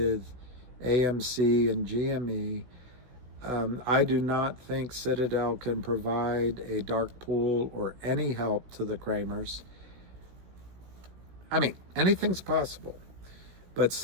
AMC and GME. I do not think Citadel can provide a dark pool or any help to the Kramers. I mean, anything's possible. But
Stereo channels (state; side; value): late; left; 16 ms